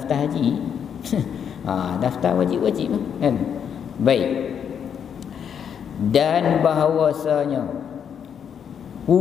haji. Daftar wajib-wajib kan. Baik. Dan bahawasanya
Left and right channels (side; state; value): right; quieter; 7.9 dB